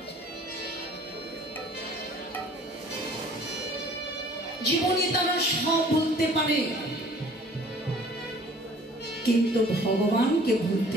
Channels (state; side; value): normal; both; correlation 0.52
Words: জীবনে তারা সব ভুলতে পারে, কিন্তু ভগবানকে